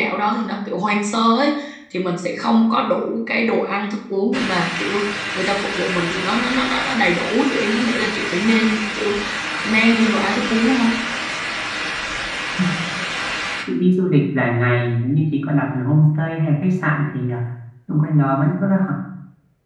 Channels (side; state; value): both; identical; correlation 1.00